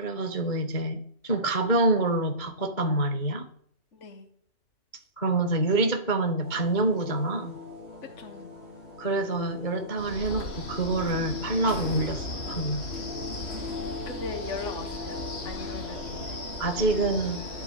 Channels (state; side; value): late; right; 2.9 ms